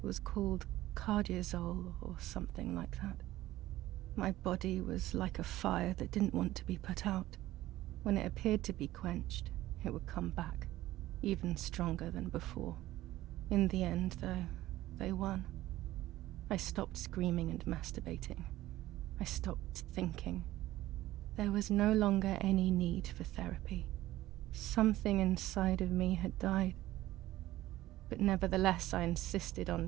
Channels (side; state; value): left; quieter; 15.7 dB